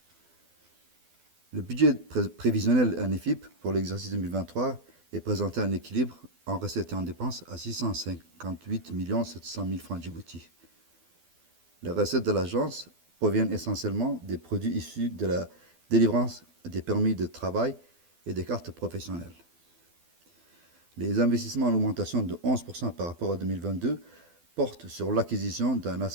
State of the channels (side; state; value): left; late; 12 ms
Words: Le budget prévisionnel ANEFIP pour l'exercice 2023 est présenté en équilibre en recettes et en dépenses à 658 700 000 francs Djibouti. Les recettes de l'agence proviennent essentiellement des produits issus de la délivrance des permis de travail et des cartes professionnelles. Les investissements en augmentation de 11% par rapport à 2022 portent sur l'acquisition d'un